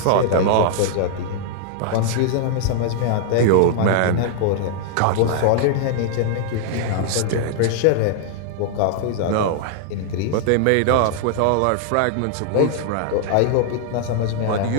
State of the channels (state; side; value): different; both; correlation 0.00